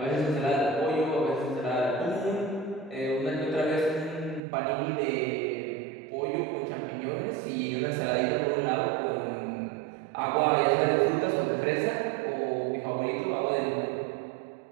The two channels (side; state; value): left; drops out; at 4.4 s